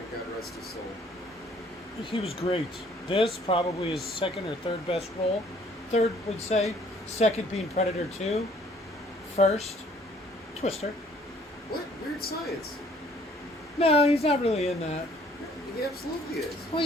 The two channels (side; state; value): both; normal; correlation 0.60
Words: God rest his soul. He was great. This probably his second or third best role. Third, would say. Second being Predator 2. First, Twister. What? Weird Science. No, he's not really in that. He absolutely is. Well,